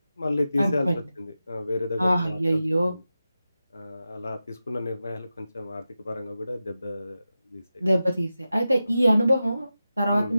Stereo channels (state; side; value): inverted; both; correlation -0.92